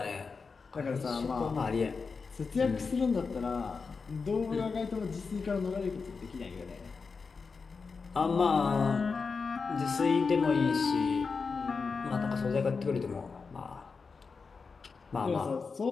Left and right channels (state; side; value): quieter; right; 4.9 dB